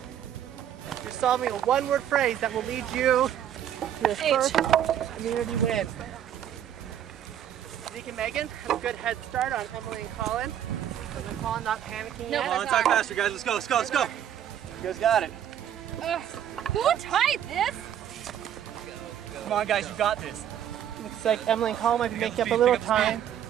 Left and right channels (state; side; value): quieter; left; 10.1 dB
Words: You're solving a one-word phrase that will lead you to your first immunity win. Zeke and Megan have a good head start on Emily and Colin. And then Colin not panicking yet. Come on, talk faster, guys. Let's go, let's go, let's go. You guys got it. Who tied this? Come on, guys, you got this. Looks like Emily and Colin might be making up a little time.